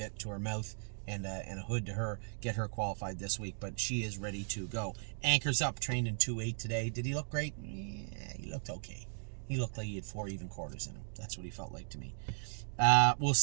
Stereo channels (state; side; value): silent; left; digital silence